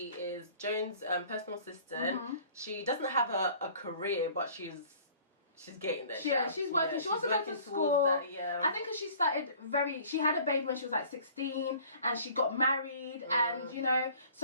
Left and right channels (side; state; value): both; inverted; correlation -0.50